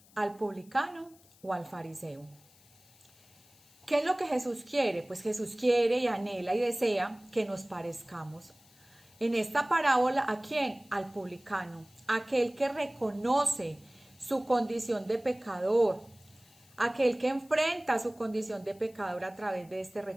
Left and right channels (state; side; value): noise; left; hiss, 27 dB below the sound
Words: ¿Al publicano o al fariseo? ¿Qué es lo que Jesús quiere? Pues Jesús quiere y anhela y desea que nos parezcamos. En esta parábola, ¿a quién? Al publicano, aquel que reconoce su condición de pecador, aquel que enfrenta su condición de pecador a través de este